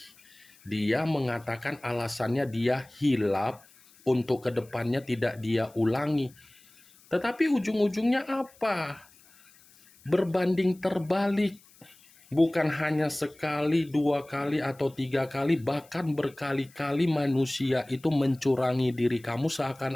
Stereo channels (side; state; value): left; noise; hiss, 27 dB below the sound